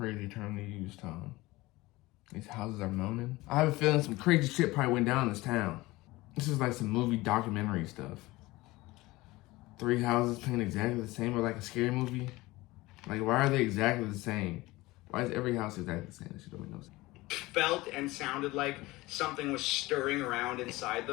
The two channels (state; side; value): quieter; right; 20.1 dB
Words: term to use, Tom. These houses are moaning. I have a feeling some crazy shit probably went down in this town. This is like some movie documentary stuff. 3 houses painted exactly the same, or like a scary movie. Like, why are they exactly the same? Why is every house exactly the same? That shit don't make no sense. Felt and sounded like something was stirring around inside